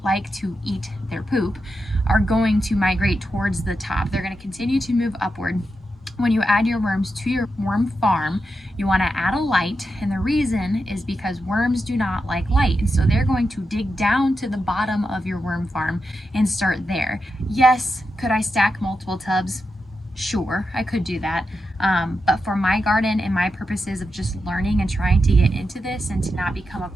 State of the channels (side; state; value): both; normal; correlation 0.87